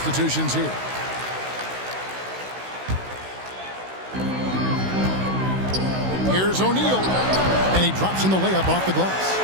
here. Here's O'Neal, and he drops in the layup off the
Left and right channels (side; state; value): left; late; 16 ms